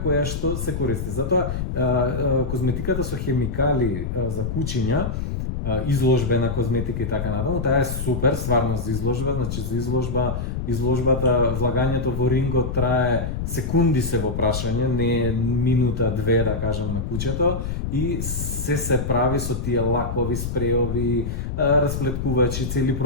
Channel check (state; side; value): noise; left; rumble, 4 dB below the sound